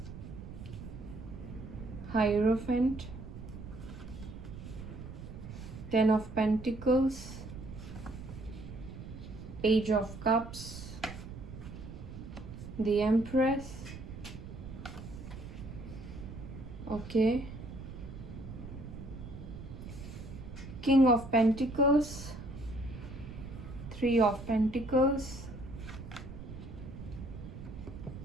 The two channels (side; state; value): right; noise; rumble, 11 dB below the sound